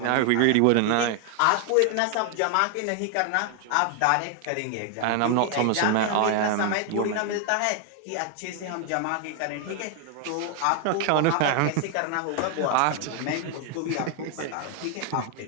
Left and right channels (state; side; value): different; both; correlation 0.00